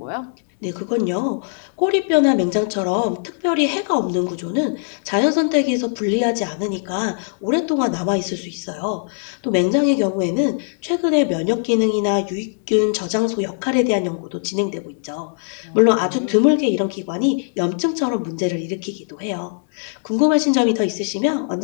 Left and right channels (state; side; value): silent; right; 65 dB below the other